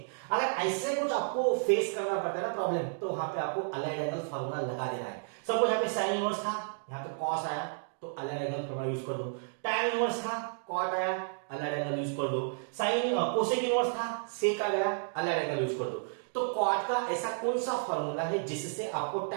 अगर ऐसे कुछ आपको फेस करना पड़ता है ना प्रॉब्लम, तो वहां पे आपको अलाइड एंगल फार्मूला लगा देना है। सपोज यहाँ पे sin इनवर्स था, यहाँ पे cos आया, तो अलाइड एंगल फार्मूला यूज कर दो। tan इनवर्स था, cot आया, अलाइड एंगल यूज कर दो। sin कोसेक इनवर्स था, sec आ गया, अलाइड एंगल यूज कर दो। तो cot का ऐसा कौन सा फार्मूला है जिससे आपको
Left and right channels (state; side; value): silent; left; digital silence